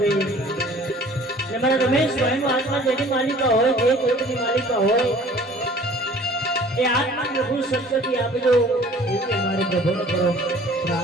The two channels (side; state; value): both; normal; correlation 0.50